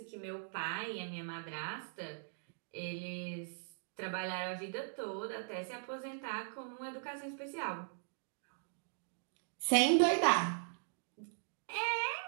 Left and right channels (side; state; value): left; silent; digital silence